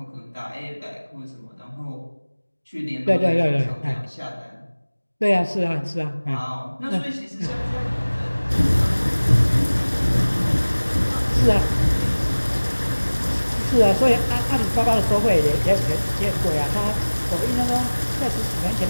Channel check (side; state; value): both; inverted; correlation -1.00